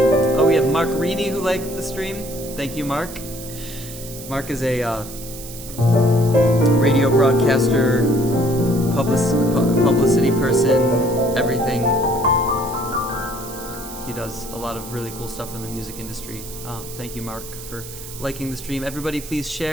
Oh, we have Mark Reedy who liked the stream. Thank you, Mark. Mark is a radio broadcaster, publicity person, everything. He does a lot of really cool stuff in the music industry. Thank you, Mark, for liking the stream. Everybody, please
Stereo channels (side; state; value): right; noise; hiss, 13 dB below the sound